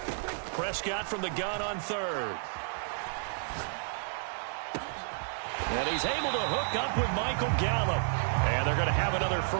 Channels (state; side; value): silent; left; digital silence